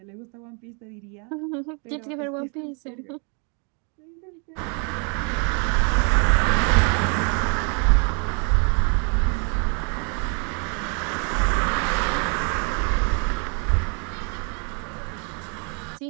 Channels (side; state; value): left; quieter; 37.1 dB